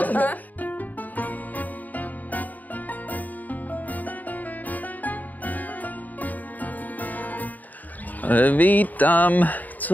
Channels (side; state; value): right; late; 0.081 ms